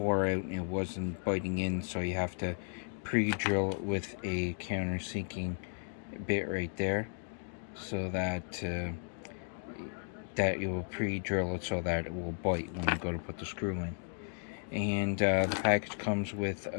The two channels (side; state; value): right; silent; digital silence